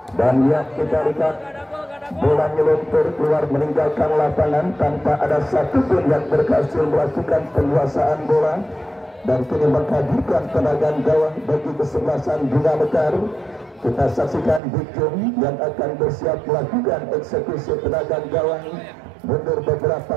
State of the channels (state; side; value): drops out; left; at 14.6 s